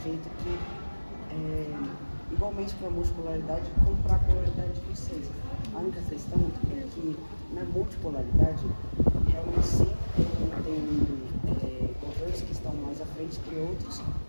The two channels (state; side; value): inverted; both; correlation -1.00